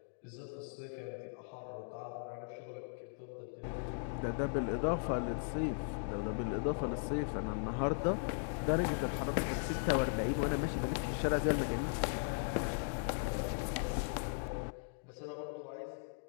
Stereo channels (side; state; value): right; silent; digital silence